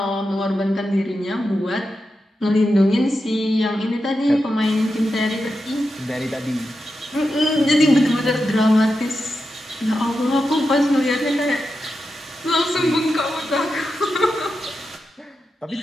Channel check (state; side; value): normal; both; correlation 0.89